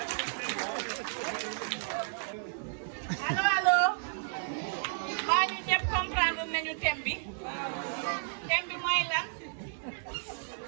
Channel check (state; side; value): silent; left; 56 dB below the other